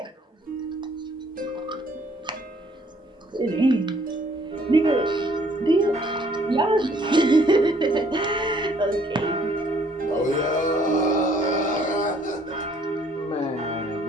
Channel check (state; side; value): normal; both; correlation 0.62